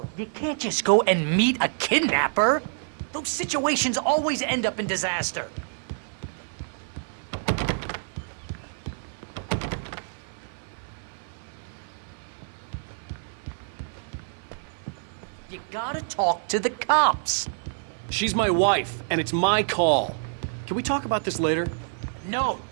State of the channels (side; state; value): left; silent; 57 dB below the other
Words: you can't just go and meet a kidnapper. Those situations always end up in disaster. You gotta talk to the cops. She's my wife, and it's my call. Can we talk about this later? No,